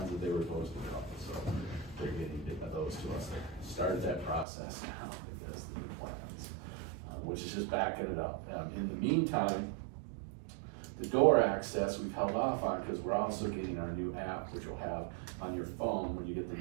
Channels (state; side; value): drops out; left; at 4.5 s